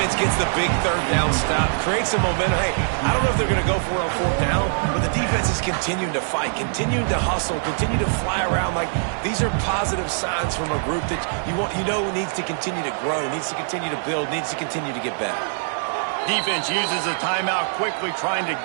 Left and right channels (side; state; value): left; silent; digital silence